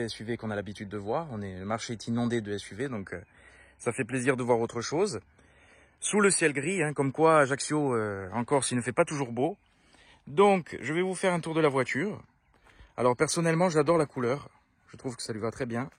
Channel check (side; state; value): both; identical; correlation 1.00